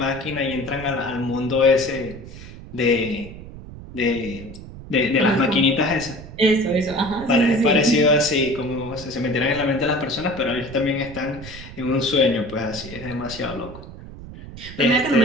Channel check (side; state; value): right; noise; rumble, 14 dB below the sound